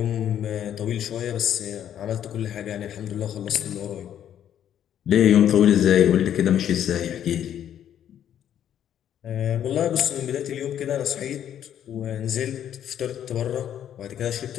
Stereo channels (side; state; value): right; quieter; 10.2 dB